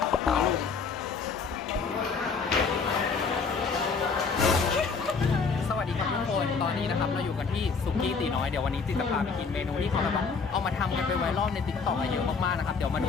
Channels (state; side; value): quieter; right; 5.1 dB